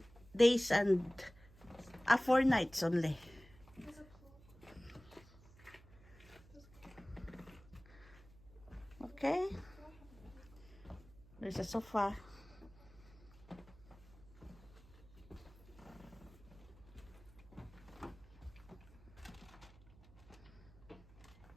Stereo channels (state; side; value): noise; right; hum, 22 dB below the sound